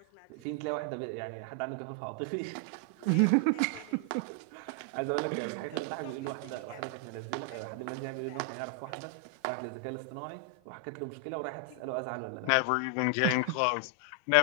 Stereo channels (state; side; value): different; both; correlation 0.00